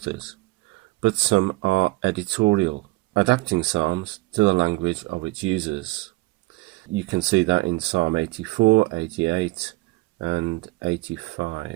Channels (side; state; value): left; quieter; 21.3 dB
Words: but some are editorial, adapting Psalms to the language of its users. You can see that in Psalm 84, 88 and